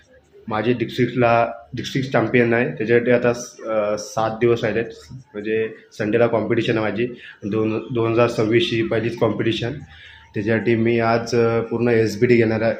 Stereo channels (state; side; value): identical; both; correlation 1.00